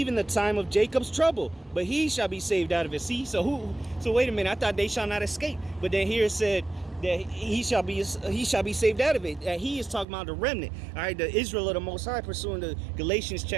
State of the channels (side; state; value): left; drops out; at 10.1 s